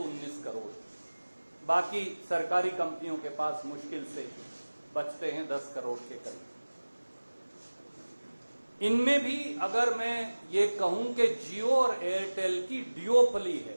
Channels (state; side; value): inverted; both; correlation -1.00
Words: करोड़। बाकी सरकारी कंपनियों के पास मुश्किल से बचते हैं 10 करोड़ के करीब। इनमें भी अगर मैं ये कहूं कि जियो और एयरटेल की ड्यूओपली